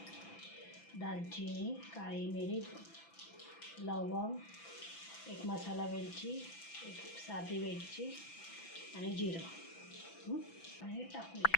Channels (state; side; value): late; right; 6.0 ms